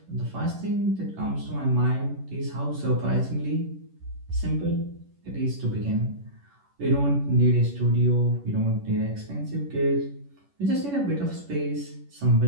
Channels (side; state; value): left; late; 11 ms